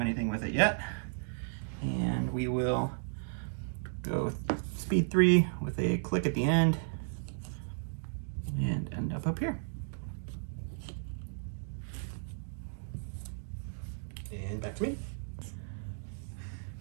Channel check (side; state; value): left; silent; digital silence